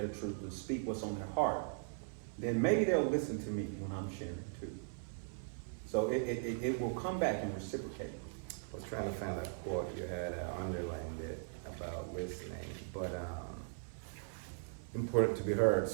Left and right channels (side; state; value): left; silent; 52 dB below the other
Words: truth, to speak what's on their heart, then maybe they'll listen to me when I'm sharing too. So it will come back and reciprocate. I was trying to find a quote you had underlined it about listening, but important to be heard.